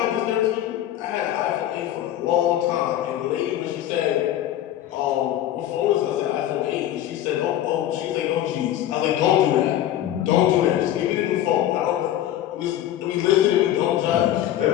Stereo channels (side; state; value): right; quieter; 12.3 dB